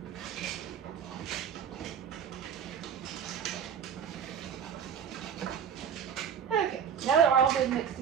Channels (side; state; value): left; quieter; 7.9 dB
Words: Now that we're all good mixed